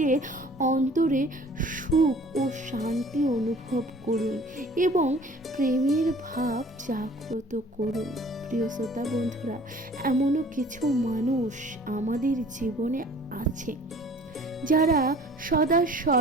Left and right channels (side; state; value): both; normal; correlation 0.50